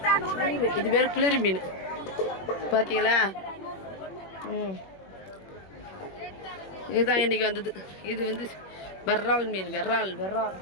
மீன். இது பேர் குளிர் மீன். பார்த்தீங்களா? இதுதான் இன்னைக்கு வந்தது. இது வந்து வெர்ரால் மீன். வெர்ரால்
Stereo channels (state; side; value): late; right; 21 ms